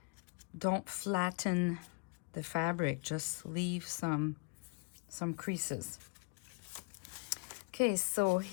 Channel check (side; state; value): right; quieter; 32.5 dB